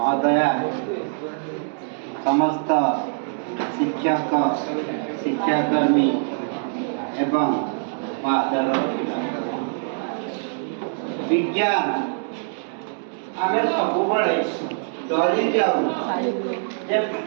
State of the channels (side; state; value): left; silent; digital silence